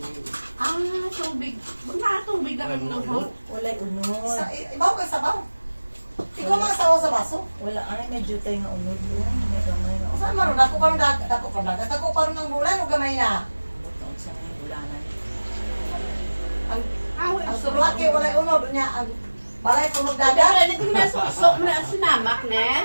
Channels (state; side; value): inverted; both; correlation -1.00